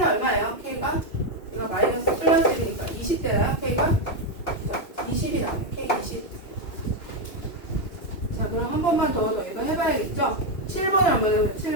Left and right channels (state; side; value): late; right; 2.7 ms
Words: 얼마예요? k가? 이거 마이너스 플러스 1이니까 20대나요? k가? 20이 나와요. k 20. 자, 그럼 한 번만 더 이거 해봐야겠죠? 7번을 한번 해보죠.